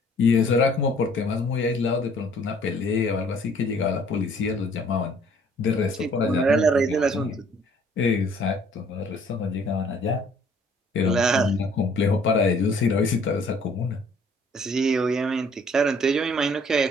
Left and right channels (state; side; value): normal; both; correlation 0.58